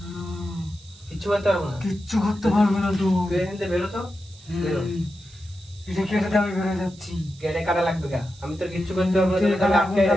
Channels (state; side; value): noise; right; hiss, 24 dB below the sound